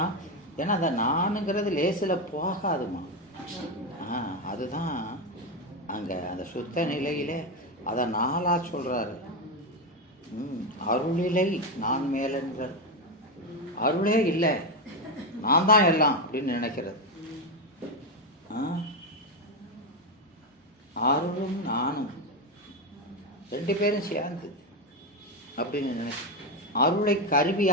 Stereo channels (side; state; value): both; normal; correlation 0.10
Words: ஏன்னா அந்த நானுங்கிறது லேசில் போகாதுமா. அதுதான் அங்கே அந்த சுத்த நிலையிலே அதை நாளாக சொல்கிறாரு. அருளிலை நான் மேலென்ற அருளே இல்லை, நான் தான் எல்லாம் அப்படின்னு நினைக்கிறது. அருளும் நானும் ரெண்டு பேரும் சேர்ந்து அப்படின்னு அருளை